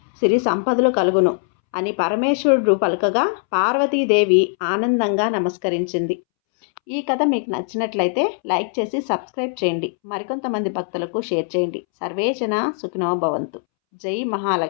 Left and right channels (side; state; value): right; silent; 65 dB below the other